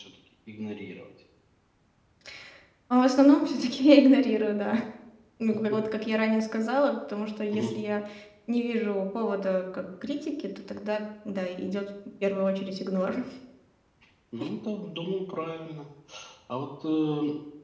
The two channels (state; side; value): identical; both; correlation 1.00